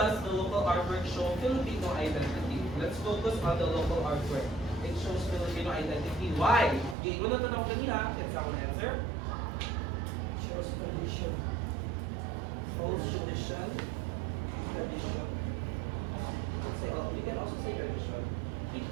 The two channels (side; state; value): left; drops out; at 7.0 s